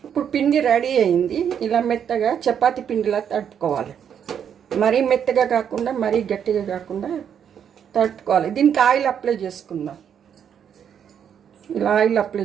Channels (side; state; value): left; quieter; 8.3 dB